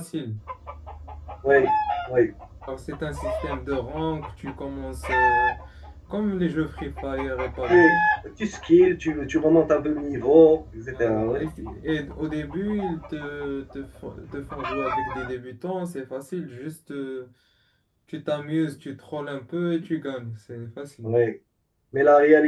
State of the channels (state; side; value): identical; both; correlation 1.00